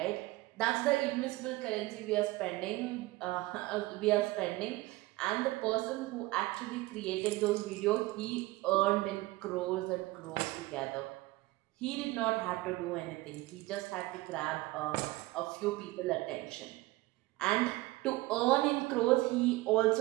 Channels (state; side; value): quieter; left; 19.8 dB